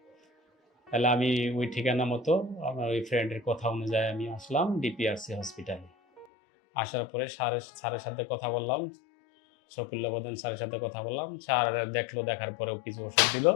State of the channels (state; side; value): drops out; right; at 6.2 s